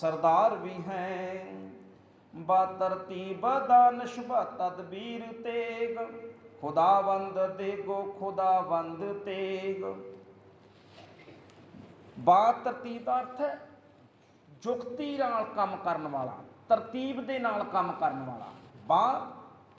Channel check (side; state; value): both; identical; correlation 1.00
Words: ਵੀ ਹੈ। ਬਾ ਤਰਤੀਬ ਦਾਨਿਸ਼ ਬਾ ਤਦਬੀਰ ਤੇਗ, ਖੁਦਾਵੰਦ ਦੇਗੋ ਖੁਦਾਵੰਦ ਤੇਗ। ਬਾ ਤਰਤੀਬ ਦਾ ਅਰਥ ਹੈ ਜੁਗਤੀ ਨਾਲ ਕੰਮ ਕਰਨ ਵਾਲਾ, ਤਰਤੀਬ ਦੇ ਨਾਲ ਕੰਮ ਕਰਨ ਵਾਲਾ। ਬਾ